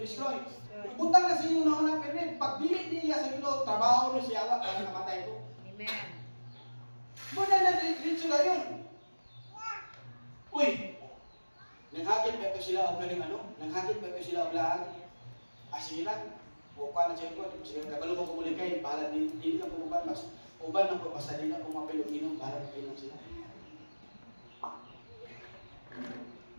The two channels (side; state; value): both; inverted; correlation -1.00